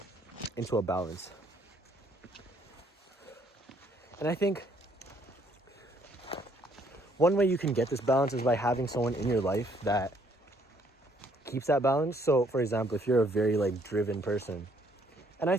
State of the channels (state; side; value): normal; both; correlation 0.66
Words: into a balance. And I think one way you can get this balance is by having someone in your life that keeps that balance. So for example, if you're a very like driven person, and I